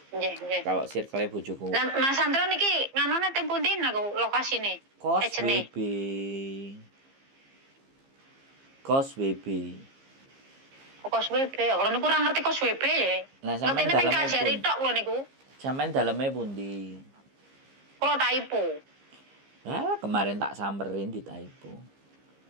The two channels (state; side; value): late; left; 15 ms